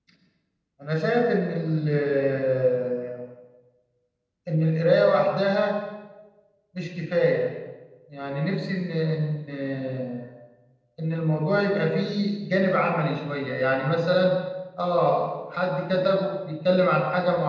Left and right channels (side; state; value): both; identical; correlation 1.00